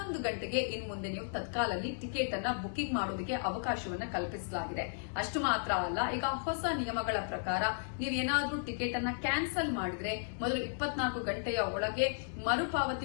ಗಂಟೆಗೆ ಇನ್ನು ಮುಂದೆ ನೀವು ತತ್ಕಾಲಲ್ಲಿ ಟಿಕೆಟ್ ಅನ್ನ ಬುಕಿಂಗ್ ಮಾಡೋದಕ್ಕೆ ಅವಕಾಶವನ್ನ ಕಲ್ಪಿಸಲಾಗಿದೆ. ಅಷ್ಟು ಮಾತ್ರ ಅಲ್ಲ, ಈಗ ಹೊಸ ನಿಯಮಗಳ ಪ್ರಕಾರ ನೀವೇನಾದ್ರೂ ಟಿಕೆಟ್ ಅನ್ನ ಕ್ಯಾನ್ಸಲ್ ಮಾಡಿದ್ರೆ ಮೊದಲು 24 ಗಂಟೆಯ ಒಳಗೆ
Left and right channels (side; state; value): right; silent; 55 dB below the other